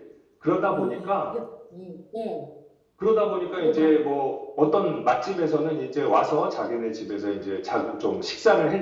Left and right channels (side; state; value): both; identical; correlation 1.00